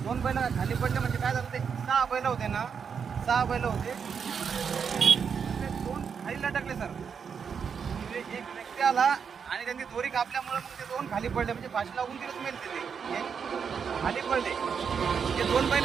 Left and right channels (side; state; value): left; quieter; 6.6 dB